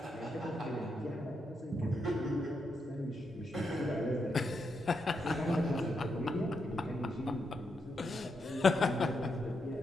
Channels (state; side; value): normal; both; correlation 0.82